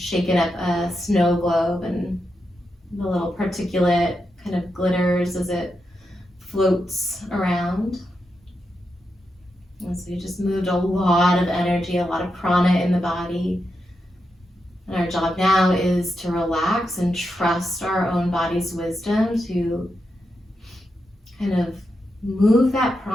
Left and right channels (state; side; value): normal; both; correlation 0.86